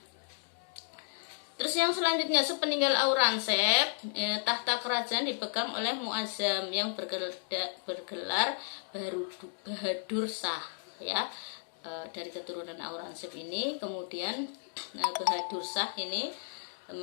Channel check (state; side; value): silent; right; digital silence